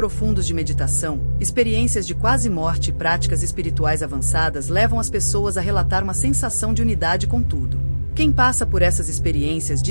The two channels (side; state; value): both; inverted; correlation -1.00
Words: de meditação, experiências de quase morte e práticas espirituais avançadas levam as pessoas a relatar uma sensação de unidade com tudo. Quem passa por essas experiências